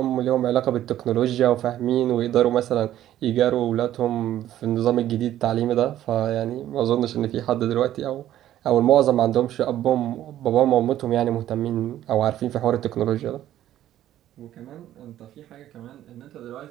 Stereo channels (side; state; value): left; quieter; 12.5 dB